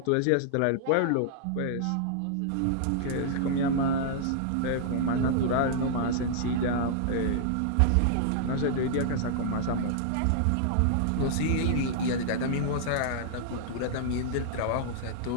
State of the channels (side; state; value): both; different; correlation -0.01